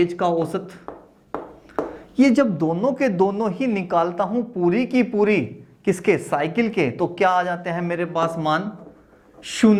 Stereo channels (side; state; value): both; identical; correlation 1.00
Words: का औसत, ये जब दोनों के दोनों ही निकालता हूं पूरी की पूरी किसके, साइकिल के, तो क्या आ जाते हैं मेरे पास मान,